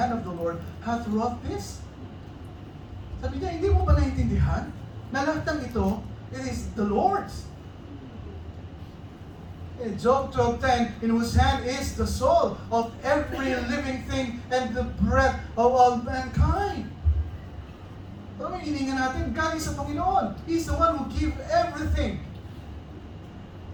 of the Lord hath wrought this? Sabi niya, hindi mo ba naintindihan na lahat ng ito, it is the Lord's. In Job 12:10, in whose hand is the soul of every living thing and the breath of all mankind. Pero may hininga natin, galing sa Panginoon. He's the one who gives everything.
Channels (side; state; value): both; identical; correlation 1.00